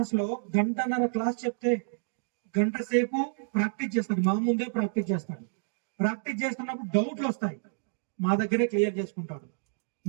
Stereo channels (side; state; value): left; silent; digital silence